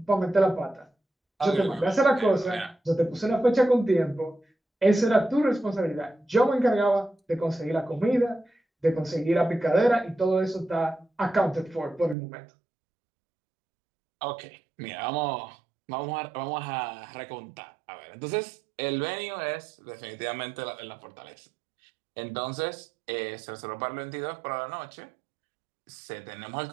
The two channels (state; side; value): drops out; left; at 12.2 s